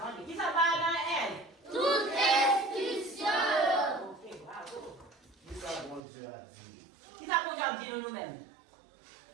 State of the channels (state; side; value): drops out; left; at 6.0 s